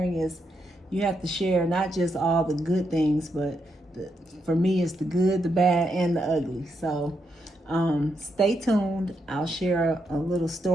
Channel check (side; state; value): both; normal; correlation 0.81